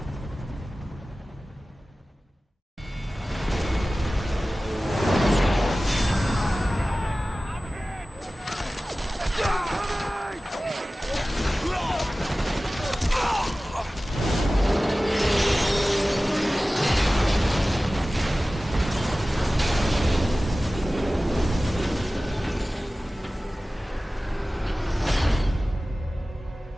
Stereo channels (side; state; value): both; normal; correlation 0.97